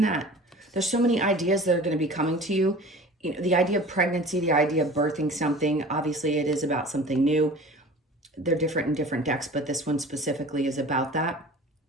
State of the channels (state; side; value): normal; both; correlation 0.41